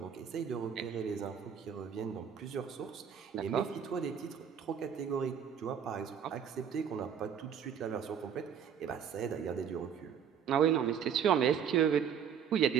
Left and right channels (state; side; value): quieter; left; 8.0 dB